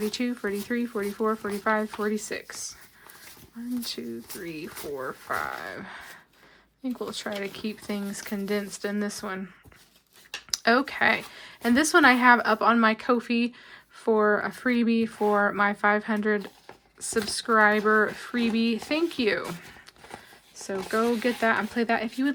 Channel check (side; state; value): both; identical; correlation 1.00